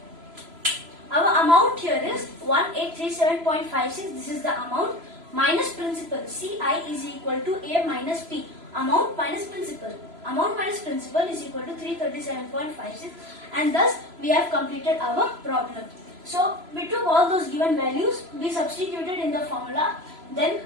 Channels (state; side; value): late; left; 3.0 ms